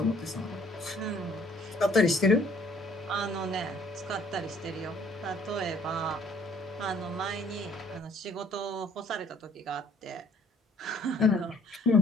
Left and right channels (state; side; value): normal; both; correlation 0.60